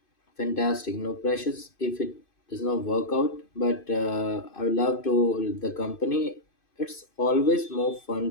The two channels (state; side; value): late; right; 2.5 ms